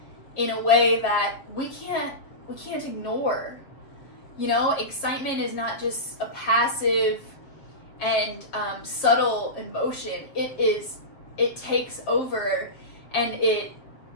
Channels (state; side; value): late; right; 7.4 ms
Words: in a way that we can't ignore. You know, excitement is not just a passive and subtle emotion. It takes over, and it